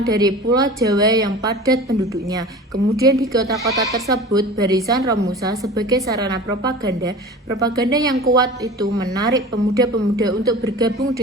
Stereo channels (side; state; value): both; normal; correlation 0.37